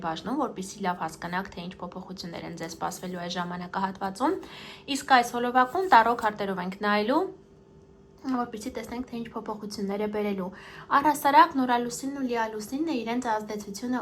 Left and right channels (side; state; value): both; identical; correlation 1.00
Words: բաժնում, որպեսզի լավ հասկանաք, թե ինչ փոփոխություններ են ձեզ սպասվելու այս ժամանակահատվածում։ Իսկ այս հոլովակում տարրո քարտերով ենք նայելու, որպեսզի տեսնենք, թե ինչ փոփոխություններ է բերելու։ Առհասարակ նորալուսինն ու լիալուսինն իրենց ազդեցությունը